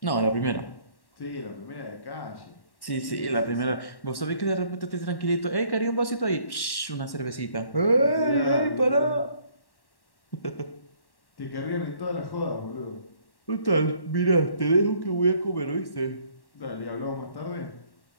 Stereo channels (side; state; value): right; late; 1.1 ms